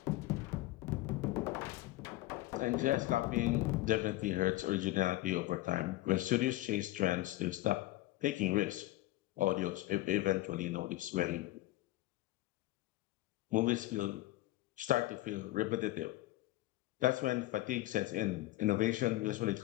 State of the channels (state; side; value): quieter; right; 17.5 dB